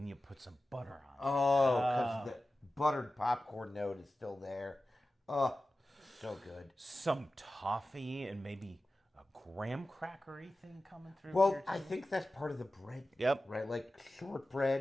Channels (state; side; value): normal; both; correlation 0.95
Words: you put some butter on it. Oh, because the buttered popcorn note is still there. Oh, so good. Some toffee and maybe a graham crackery thing coming through. Well, here, I too. think that's part of the bread. Yep. Right? Like